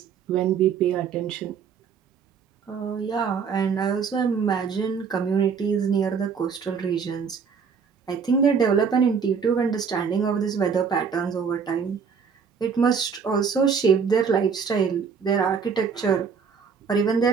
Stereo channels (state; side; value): quieter; left; 6.2 dB